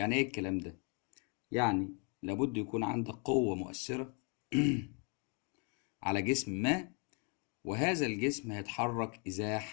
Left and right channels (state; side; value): quieter; right; 36.9 dB